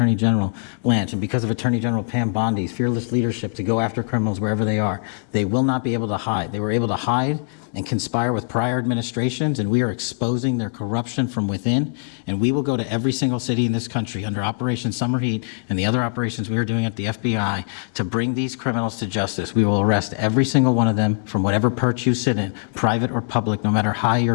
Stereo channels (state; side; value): silent; right; digital silence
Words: General Blanche, and because of Attorney General Pam Bondi's fearless leadership to go after criminals wherever they are. They will not be able to hide. They were able to hide and conspire with prior administrations, and we are exposing their corruption from within. And we will go to every single city in this country under Operation Summer Heat and the other operations we are doing at the FBI to bring these criminals to justice. We will arrest every single one of them from whatever perch you sit in, private or public, no matter how